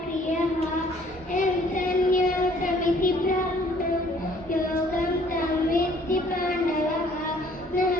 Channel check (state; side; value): normal; both; correlation 0.58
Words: యం సన్యాసమితి ప్రాప్తో యోగం తం విద్ధి పాండవః న